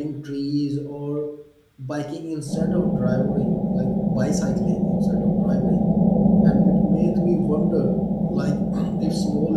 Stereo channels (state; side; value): identical; both; correlation 1.00